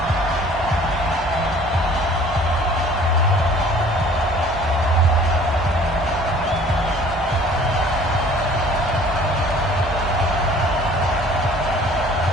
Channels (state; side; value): noise; right; hum, 15 dB below the sound